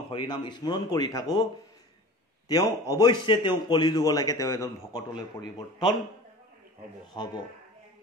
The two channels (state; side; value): normal; both; correlation 0.38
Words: হৰি নাম স্মৰণ কৰি থাকোঁ তেওঁ অৱশ্যে তেওঁ কলি যুগলৈকে তেওঁ এজন ভকতলৈ পৰিৱৰ্তন হ'ব